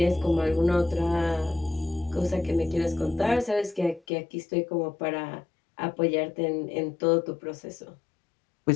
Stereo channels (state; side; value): drops out; right; at 4.0 s